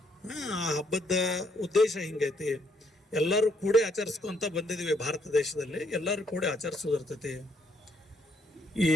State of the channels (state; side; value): normal; both; correlation 0.71